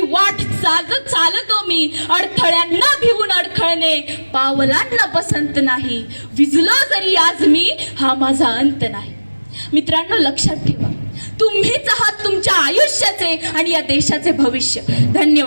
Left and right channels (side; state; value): both; inverted; correlation -1.00